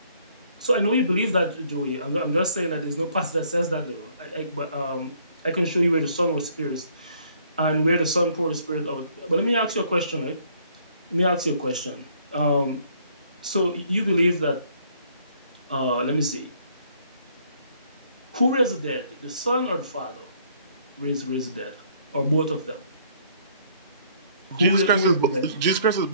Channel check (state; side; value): inverted; both; correlation -0.64